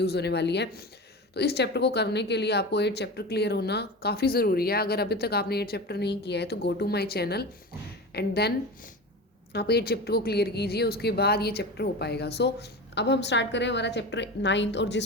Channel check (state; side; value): normal; both; correlation 0.28